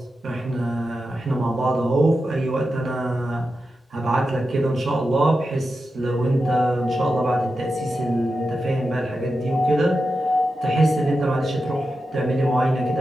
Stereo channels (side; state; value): both; normal; correlation 0.90